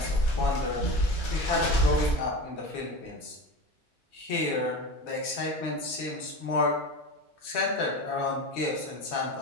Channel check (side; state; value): both; normal; correlation 0.28